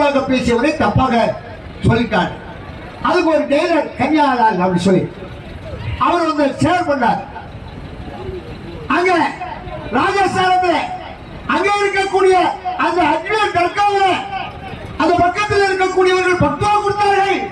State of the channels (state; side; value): identical; both; correlation 1.00